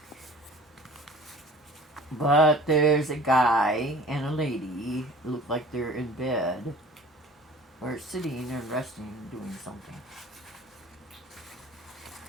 But there's a guy and a lady who look like they're in bed or sitting and resting and doing something.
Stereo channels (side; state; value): both; normal; correlation 0.45